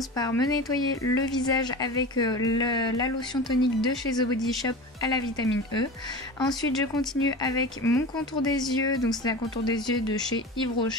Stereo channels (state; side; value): normal; both; correlation 0.31